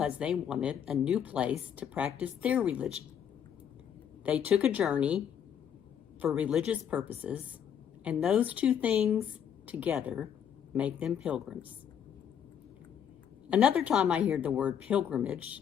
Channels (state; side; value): quieter; right; 8.6 dB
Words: they wanted a new place to practice their religion. They took a journey for religious purposes, and those two things together make them pilgrims. Another time I hear the word pilgrimage